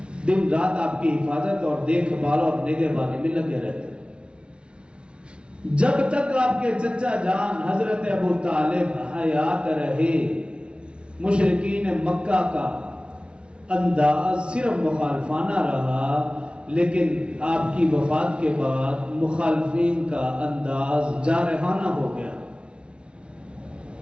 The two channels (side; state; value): left; late; 0.057 ms